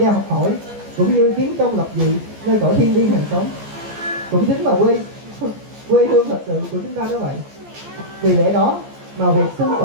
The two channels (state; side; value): late; left; 14 ms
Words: học hỏi cũng như kiến công lập dị nơi cõi thiên liêng hàng sống, cũng chính là quê hương thật sự của chúng ta đó vậy. Vì lẽ đó mà việc sinh